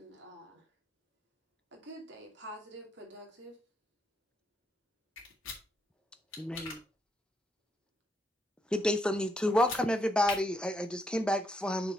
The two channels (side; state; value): both; normal; correlation 0.77